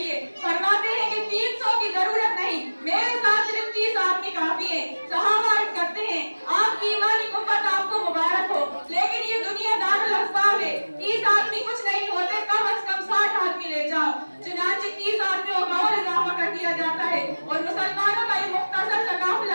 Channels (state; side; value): inverted; both; correlation -1.00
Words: فرماتے ہیں کہ 300 کی ضرورت نہیں، میرے ساتھ صرف 30 آدمی کافی ہیں۔ صحابہ عرض کرتے ہیں آپ کی ایمانی قوت آپ کو مبارک ہو، لیکن یہ دنیا دار الاسباب ہے، 30 آدمی کچھ نہیں ہوتے، کم از کم 60 آدمی لے جاؤ۔ چنانچہ 30 آدمیوں کا اور اضافہ کر دیا جاتا ہے اور مسلمانوں کا یہ مختصر سا